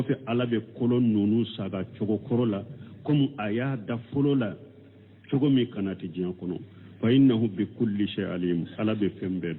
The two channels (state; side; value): identical; both; correlation 1.00